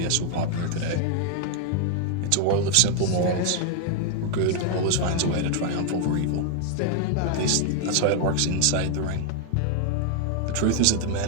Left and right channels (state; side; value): different; both; correlation 0.00